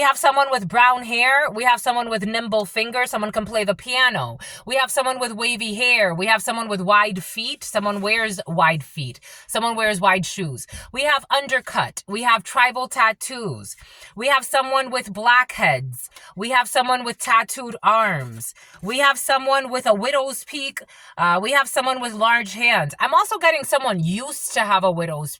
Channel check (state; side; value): identical; both; correlation 1.00